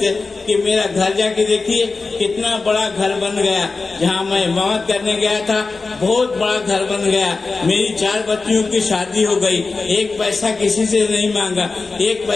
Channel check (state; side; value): quieter; right; 4.0 dB